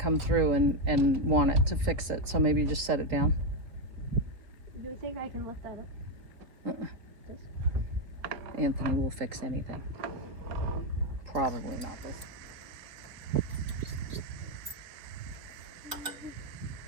through and want it to fix it. So maybe you just set it down. Do you think I can lift that up? Anthony will fix anything. Probably not this.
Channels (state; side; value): late; left; 3.8 ms